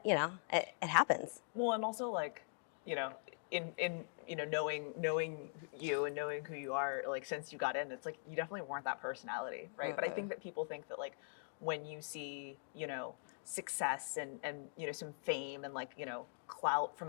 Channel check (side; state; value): right; silent; digital silence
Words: it happens. Well, and also like, in knowing you and knowing who you are, like since you got in, it's like you definitely weren't that personality, right? Mm-hmm. But I think that people think that like when you see, success and some fame and like, clout from